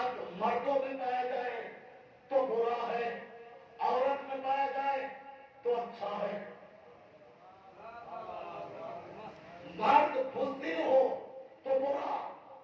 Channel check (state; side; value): identical; both; correlation 1.00